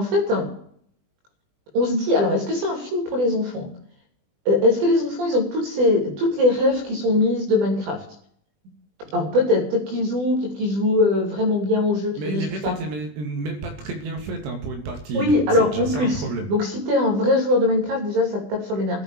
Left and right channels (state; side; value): late; left; 20 ms